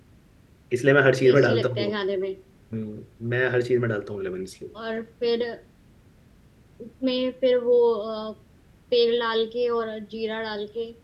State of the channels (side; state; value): both; identical; correlation 1.00